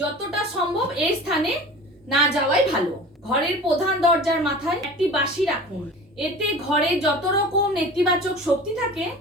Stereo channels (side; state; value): both; normal; correlation 0.38